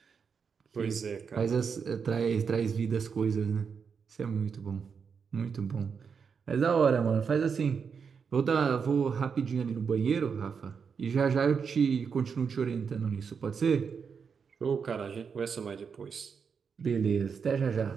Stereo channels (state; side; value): quieter; left; 6.1 dB